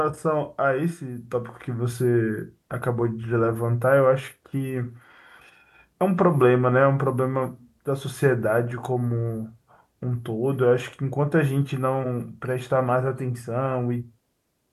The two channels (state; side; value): identical; both; correlation 1.00